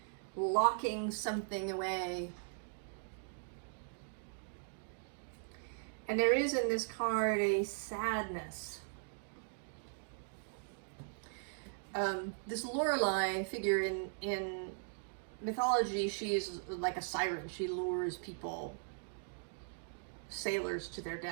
Locking something away. And there is in this card a sadness. This Lorelei figure in mythology, she is like a siren. She lures people, sailors, to their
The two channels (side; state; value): left; silent; digital silence